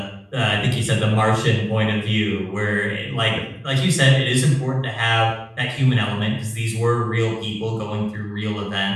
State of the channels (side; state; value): both; identical; correlation 1.00